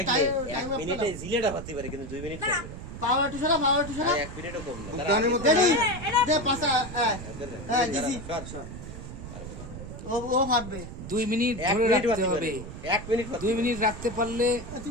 এক মিনিটে জিলেটা হতে পারে কিন্তু 2 মিনিট লাগবে না। পাওয়ার টু সরা 1 মিনিটও কম না। গানের মধ্যে রেডি দে পাসা হ্যাঁ দিছি সর। ও ফাটবে 2 মিনিট 1 ধরে মিনিট রাখতে হবে। 1 মিনিট 2 মিনিট রাখতে পারলে তুই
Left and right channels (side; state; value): right; noise; rumble, 11 dB below the sound